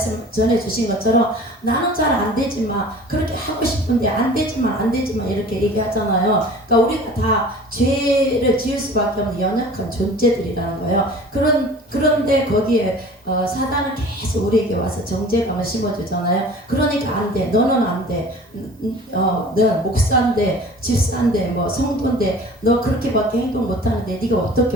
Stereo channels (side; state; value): both; normal; correlation 0.44